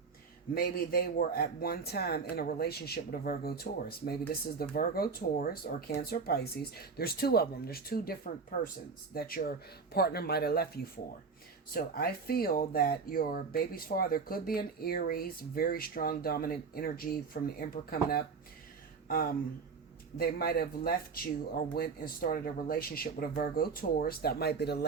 Maybe they were at one time in a relationship with a Virgo Taurus. Maybe this is the Virgo Taurus or Cancer Pisces. There's two of them. There's two different persons that your partner might have left you for. So I feel that your baby's father could be an Aries, very strong dominant energy from the Emperor coming up. They might have left you or went and started a relationship with a Virgo Taurus. That might be the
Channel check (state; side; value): quieter; left; 5.1 dB